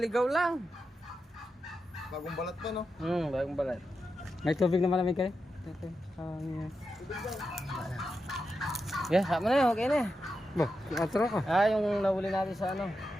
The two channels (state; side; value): normal; both; correlation 0.88